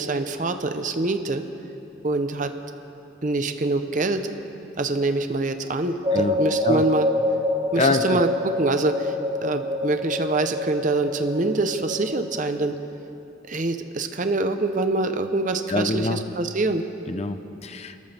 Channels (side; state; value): both; normal; correlation 0.38